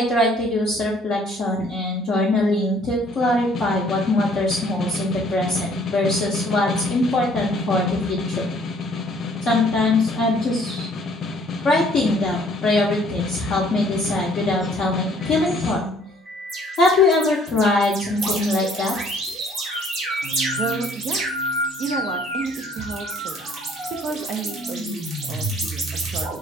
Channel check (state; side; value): normal; both; correlation 0.59